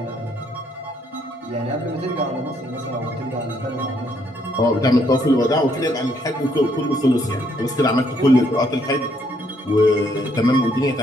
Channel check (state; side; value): normal; both; correlation 0.70